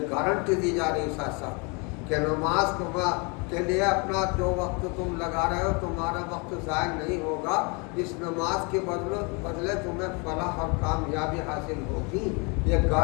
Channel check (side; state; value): right; quieter; 31.6 dB